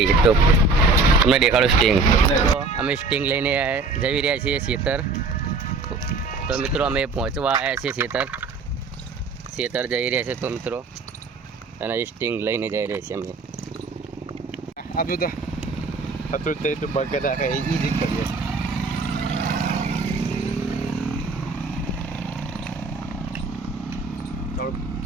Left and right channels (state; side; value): quieter; left; 4.0 dB